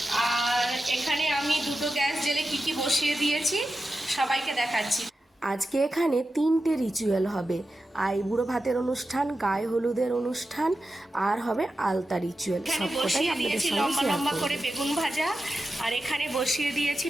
আর এখানে আমি দুটো গ্যাস জেলে কি কি বসিয়ে দিয়েছি সবাইকে দেখাচ্ছি। আজকে এখানে 3টে রিচুয়াল হবে, আইবুড়ো ভাতের অনুষ্ঠান, গায়ে হলুদের অনুষ্ঠান, আর হবে আলতা রিচুয়াল। এখানে বসিয়ে দিয়েছি লম্বা লম্বা করে বেগুন ভাজা, আর এখানে বসিয়ে দিয়েছি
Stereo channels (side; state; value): both; normal; correlation 0.91